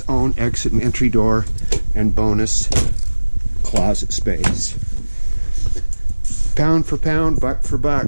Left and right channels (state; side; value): inverted; both; correlation -1.00